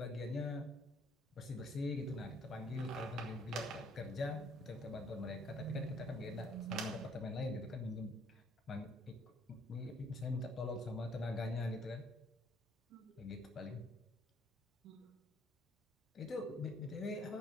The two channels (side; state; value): both; normal; correlation 0.64